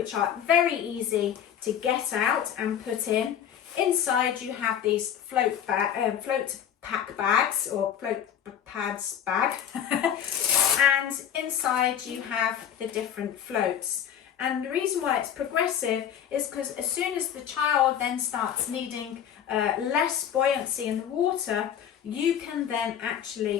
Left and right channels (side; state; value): right; quieter; 9.3 dB